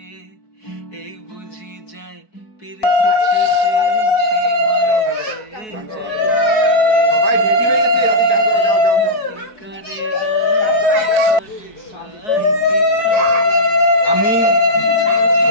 এই বুঝি যায় পিরিতি ছুটে সেই ভয়েতে যায় সবাই রেডি হয়ে গেছে, রাতে চান করো, যাও যাও যাও। কি করে রাই কি করে আমি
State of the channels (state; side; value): late; right; 4.6 ms